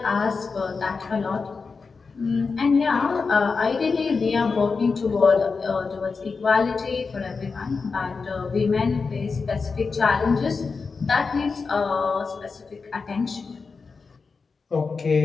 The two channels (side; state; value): right; quieter; 4.7 dB